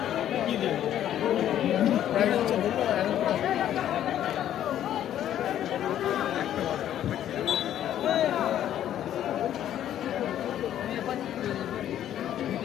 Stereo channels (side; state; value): right; quieter; 11.2 dB